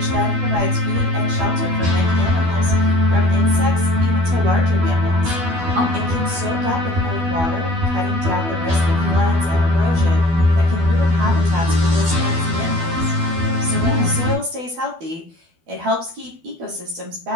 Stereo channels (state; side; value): late; left; 12 ms